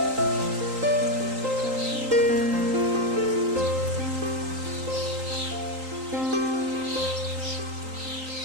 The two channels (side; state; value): left; late; 3.8 ms